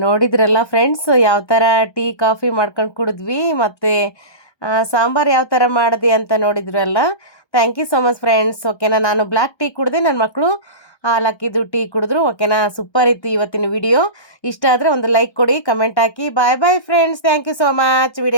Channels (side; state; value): right; late; 1.2 ms